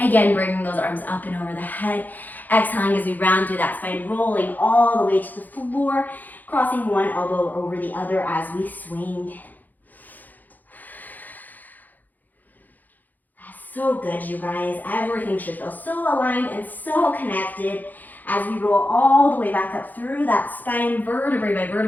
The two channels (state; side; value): late; right; 0.084 ms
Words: bringing those arms up and over the head. Exhaling as we round through that spine, rolling all the way to the floor, crossing one elbow over the other as we swing. That's so good, you guys. Everything should feel so aligned and so connected as we roll all the way back up through that spine, vertebrae by